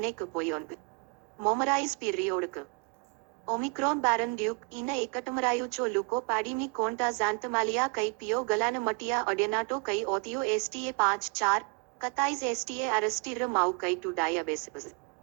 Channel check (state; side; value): quieter; left; 33.4 dB